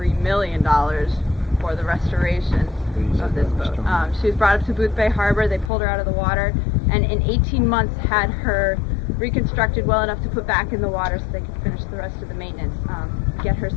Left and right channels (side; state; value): right; drops out; at 5.7 s